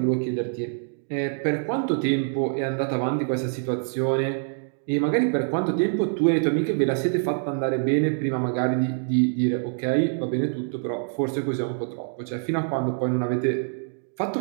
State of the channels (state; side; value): silent; left; digital silence